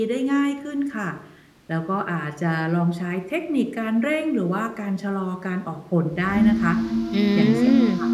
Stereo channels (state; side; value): identical; both; correlation 1.00